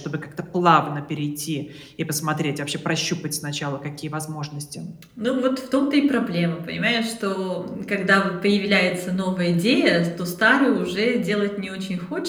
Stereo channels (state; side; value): identical; both; correlation 1.00